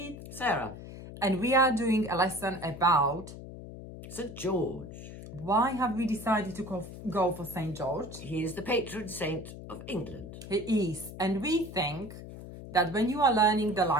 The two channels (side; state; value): left; noise; hum, 12 dB below the sound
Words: Sarah. and we are doing a lesson about St. George. why have we decided to go for Saint George. He is the patron saint of England. He is, and we think that when you are learning the